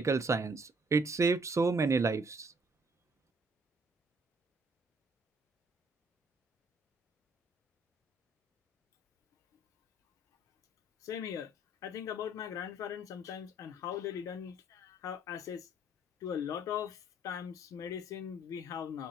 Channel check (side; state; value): both; normal; correlation 0.63